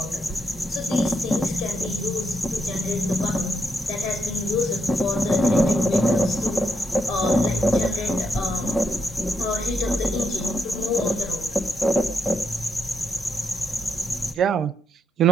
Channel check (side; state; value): both; normal; correlation 0.79